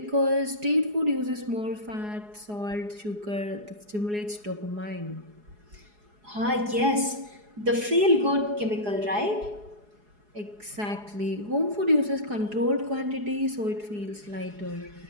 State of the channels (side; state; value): left; late; 4.8 ms